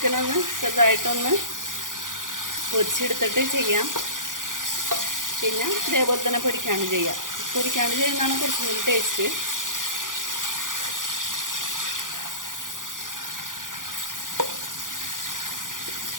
ചെറുതായിട്ടൊന്ന് പൊരിച്ചെടുത്തിട്ട് ചെയ്യാം, പിന്നെ ഇതേപോലെ തന്നെ പൊരിക്കാണ്ട് ചെയ്യാം. പൊരിക്കാണ്ട് ചെയ്യുന്നതാണ് കുറച്ചും കൂടി ടേസ്റ്റ്.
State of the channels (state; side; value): late; left; 0.89 ms